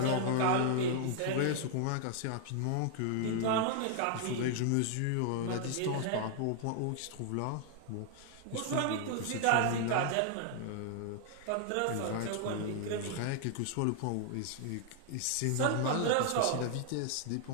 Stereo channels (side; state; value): both; different; correlation 0.00